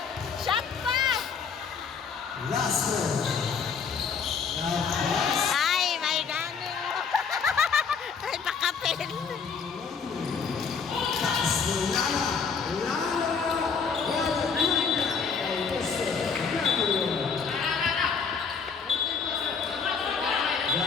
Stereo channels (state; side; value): quieter; right; 5.9 dB